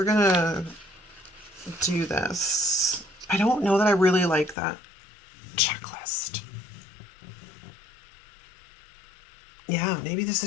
gonna do this, I don't know that I really like that checklist. Yeah, maybe this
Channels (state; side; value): drops out; right; at 4.5 s